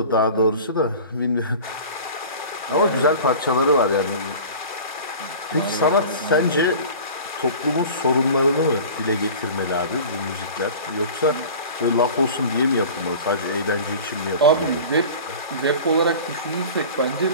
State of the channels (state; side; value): inverted; both; correlation -0.39